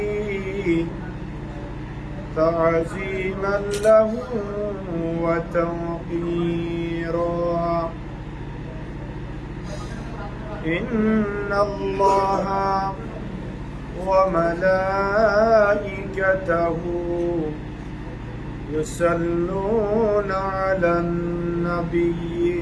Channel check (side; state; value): both; identical; correlation 1.00